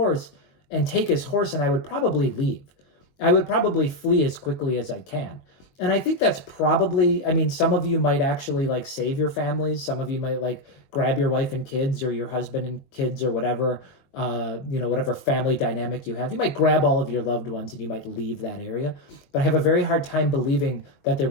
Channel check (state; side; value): late; right; 21 ms